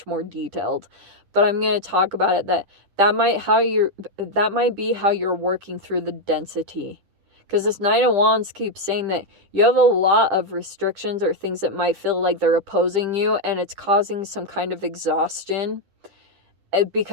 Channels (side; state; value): left; late; 10 ms